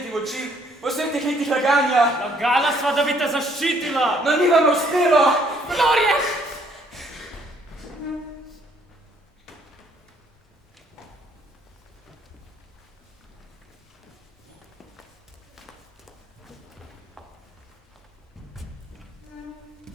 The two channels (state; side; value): normal; both; correlation 0.65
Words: v oči, po vseh teh letih laganja. Lagala sva, da bi te zaščitila. No, ni vam uspelo! Florian!